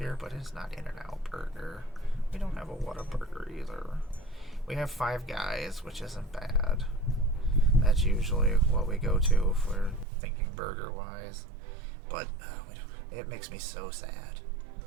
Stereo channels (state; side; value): drops out; left; at 10.1 s